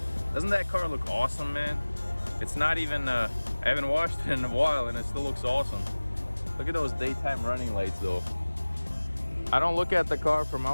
doesn't that car look awesome, man? It's not even, I haven't washed it in a while and it still looks awesome. Look at those daytime running lights though. I don't look at the car from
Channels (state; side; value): inverted; both; correlation -1.00